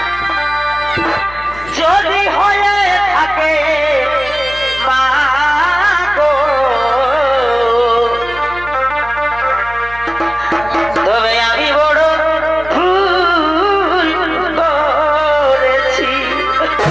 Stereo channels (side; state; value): left; noise; hum, 17 dB below the sound